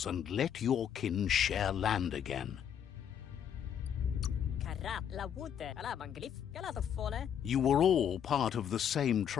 and let your kin share land again. You were all part of the same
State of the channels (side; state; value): right; quieter; 8.9 dB